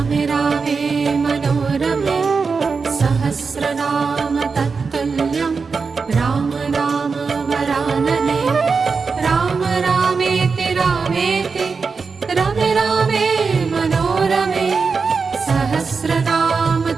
रामे मनोरमे सहस्रनाम तत्तुल्यं राम नाम वरानने राम रामेति रामेति रमे रामे मनोरमे सहस्रनाम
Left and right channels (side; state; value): left; quieter; 4.9 dB